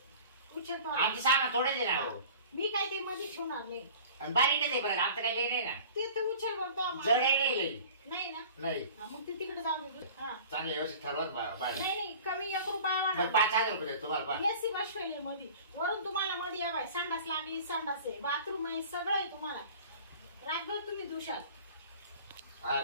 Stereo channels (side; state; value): both; inverted; correlation -0.43